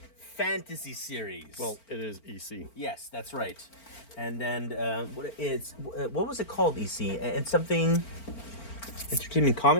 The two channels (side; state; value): right; late; 4.4 ms